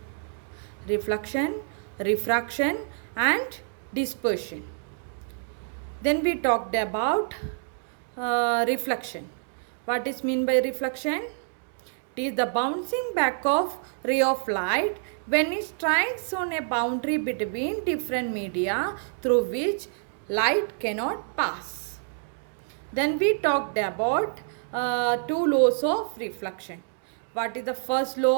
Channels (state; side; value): silent; left; digital silence